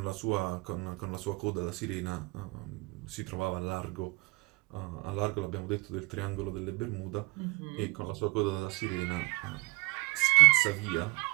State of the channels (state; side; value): quieter; left; 26.6 dB